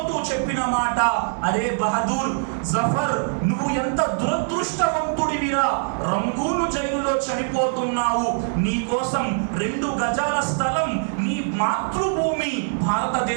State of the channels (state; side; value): silent; left; digital silence